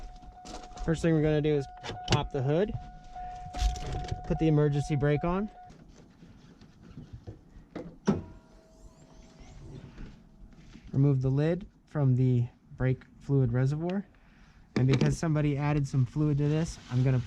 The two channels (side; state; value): both; identical; correlation 1.00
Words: First thing we're going to do is pop the hood, put the emergency brake on, remove the lid from the brake fluid reservoir, and because somebody added some fluid to this, I'm going to